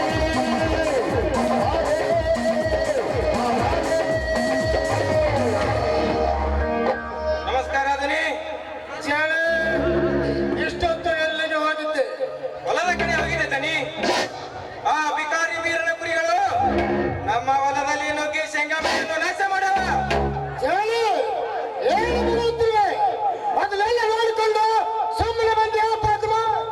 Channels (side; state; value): both; identical; correlation 1.00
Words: ನಮಸ್ಕಾರ ಅದನಿ ಚಾಳಿ ಇಷ್ಟೊತ್ತು ಎಲ್ಲಿಗೆ ಹೋಗಿದ್ದೆ? ಹೊಲದ ಕಡೆ ಹೋಗಿದೆ ದನಿ. ಆ ಬಿಕಾರಿ ವೀರನ ಕುರಿಗಳು ನಮ್ಮ ಹೊಲದಲ್ಲಿ ನುಗ್ಗಿ ಶೇಂಗಾ ಬೆಳೆಯನ್ನು ನಾಶ ಮಾಡವ. ಚಾಳಿ ಏನು ಬರುತ್ತಿವೆ? ಮೊದಲೆಲ್ಲ ನೋಡಿಕೊಂಡು ಸುಮ್ಮನೆ ಬಂದು ಹೇಳ್ಬಾರ್ದು.